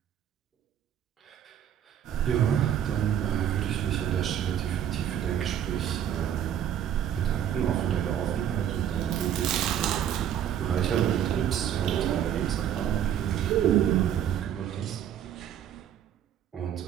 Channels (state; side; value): quieter; left; 10.0 dB